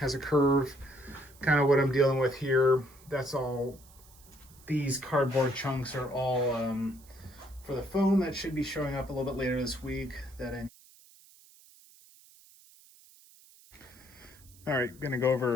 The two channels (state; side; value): noise; right; hiss, 25 dB below the sound